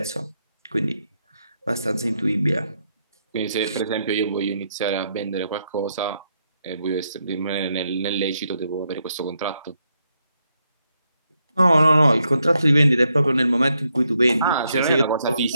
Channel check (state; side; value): inverted; both; correlation -0.80